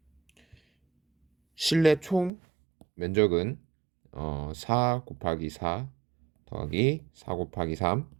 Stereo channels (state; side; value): drops out; left; at 2.3 s